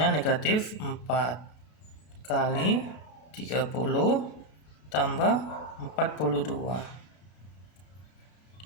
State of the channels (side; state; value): right; late; 33 ms